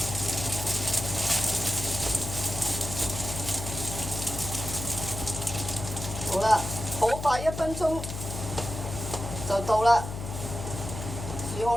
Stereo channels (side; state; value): left; noise; hum, 7 dB below the sound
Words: 好啦，好快1分鐘就到啦，煮好